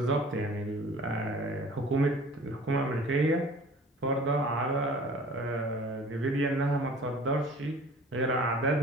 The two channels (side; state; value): both; normal; correlation 0.46